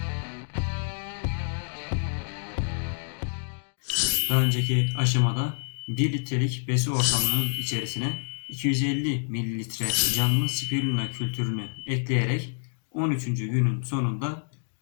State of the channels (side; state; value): right; silent; digital silence